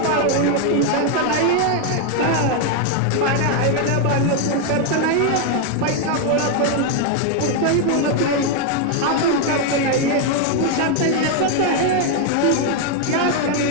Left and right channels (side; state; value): both; different; correlation 0.01